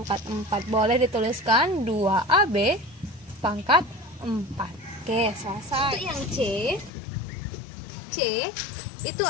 4. Boleh dituliskan 2AB pangkat 4. Oke, selesai. Untuk yang C itu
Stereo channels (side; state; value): right; drops out; at 6.9 s